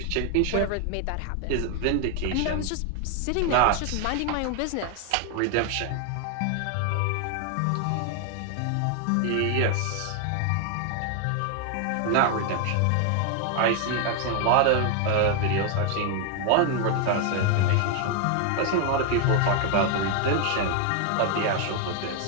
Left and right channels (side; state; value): both; different; correlation 0.01